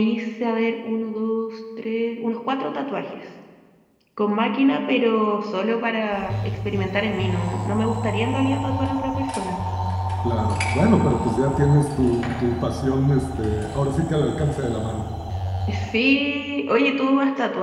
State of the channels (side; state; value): both; identical; correlation 1.00